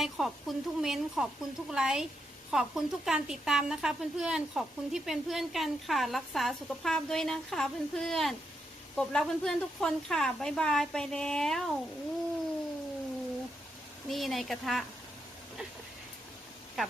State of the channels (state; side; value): normal; both; correlation 0.82